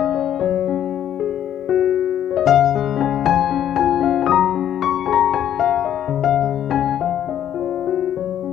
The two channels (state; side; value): quieter; right; 10.5 dB